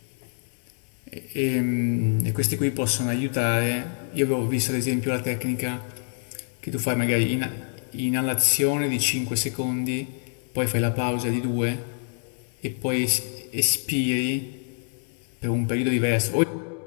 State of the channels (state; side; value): silent; right; 61 dB below the other